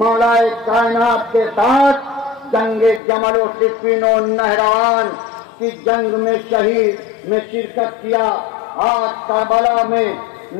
کائنات کے ساتھ جنگ جمل و صفین و نہروان کی جنگ میں شہید میں شرکت کیا. آج کربلا میں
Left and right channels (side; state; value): right; drops out; at 3.0 s